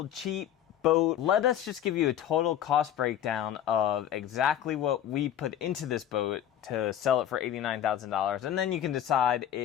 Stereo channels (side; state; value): right; quieter; 10.5 dB